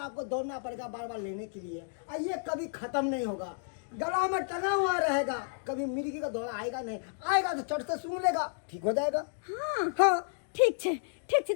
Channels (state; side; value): silent; right; digital silence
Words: आपको दौड़ना पड़ेगा बार बार लेने के लिए और ये कभी खत्म नहीं होगा। गला में टंगा हुआ रहेगा कभी मिर्गी का दौरा आएगा नहीं। आएगा तो चढ़ से सूंघ लेगा ठीक हो जाएगा। हां हाँ ठीक छे